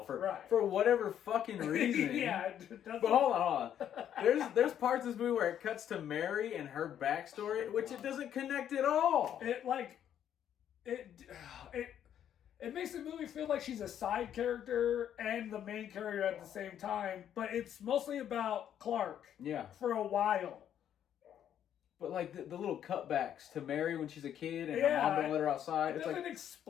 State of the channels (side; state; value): right; quieter; 9.9 dB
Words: for whatever fucking reason. Yeah, but hold on. There's parts of this movie where it cuts to Mary and her backstory, which it doesn't connect at all. It makes the movie feel like she's a side character and the main character at the same time, but it's mostly about Clark. Yeah. For a while. But like the little cutbacks to Mary when she's a kid and her mom don't let her outside. It doesn't